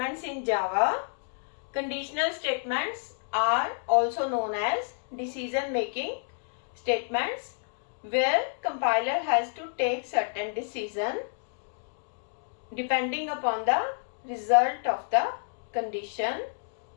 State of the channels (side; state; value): right; silent; digital silence